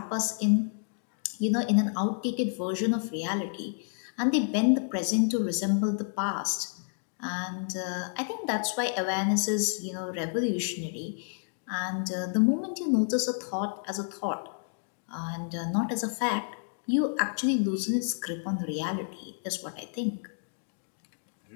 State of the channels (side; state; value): right; silent; digital silence